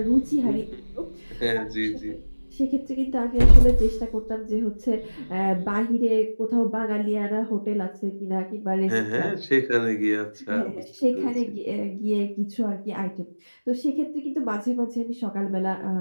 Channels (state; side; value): inverted; both; correlation -1.00